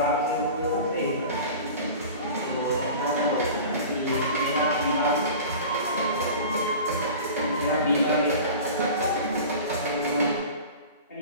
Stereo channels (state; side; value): inverted; both; correlation -0.38